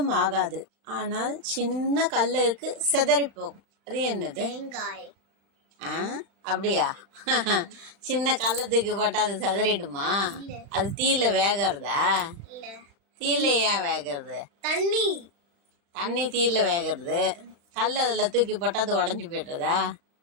ஆகாது, ஆனால் சின்ன கல்லுக்கு சிதறி போகும். அது என்னது? தேங்காய். அப்படியா? சின்ன கள்ளத்துக்கு போட்டா அது சிதறிடுமா? அது தீயில வேகிறதா? தீயில ஏன் வேகிறது? தண்ணி தீயில வேகிறது. கல் அதுல தூக்கி போட்டா அது உடஞ்சு போயிடுறதா?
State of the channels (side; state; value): left; late; 35 ms